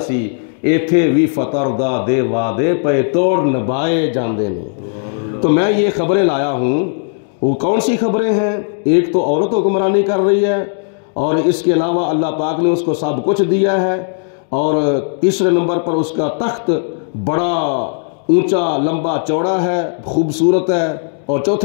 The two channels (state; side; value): silent; right; digital silence